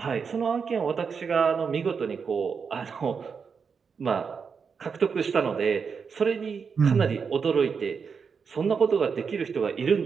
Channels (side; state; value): left; quieter; 5.9 dB